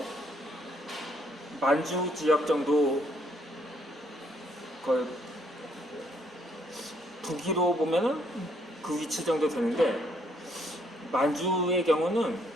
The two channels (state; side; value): normal; both; correlation 0.69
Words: 만주 지역 정도, 북위로 보면은 그 위치 정도 되는데, 만주의 경우는